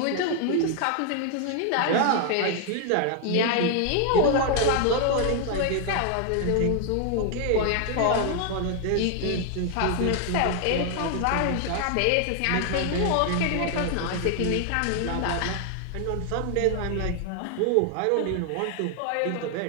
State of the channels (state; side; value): different; both; correlation 0.00